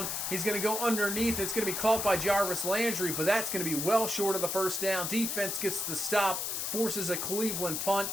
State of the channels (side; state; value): left; noise; hiss, 2 dB below the sound